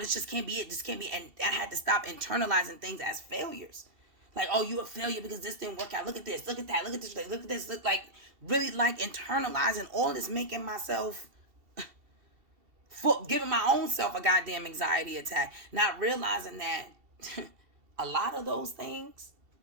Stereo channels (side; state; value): left; late; 2.7 ms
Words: just can't be it. This can't be. And I had to stop internalizing things as failures. Like, oh, you a failure because this didn't work out. Look at this. Look at that. Look at this. Look at this. Look, like, really, like, internalizing all this, making myself, giving my own self a goddamn anxiety attack. Not realizing that a lot of those things